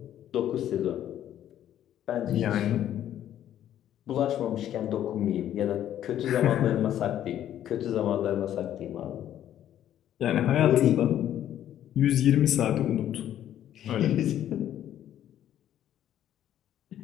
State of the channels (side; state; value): right; quieter; 11.3 dB